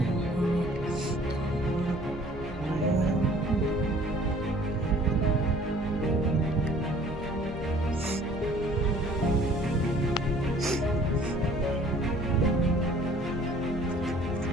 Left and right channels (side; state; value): both; normal; correlation 0.53